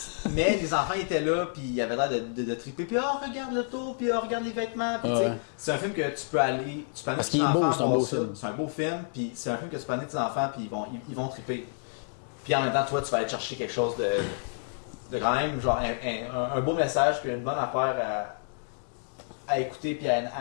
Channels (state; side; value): silent; right; digital silence